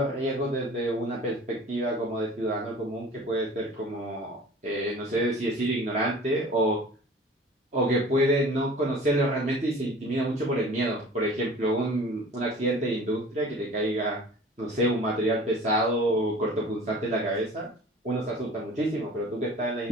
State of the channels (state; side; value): normal; both; correlation 0.45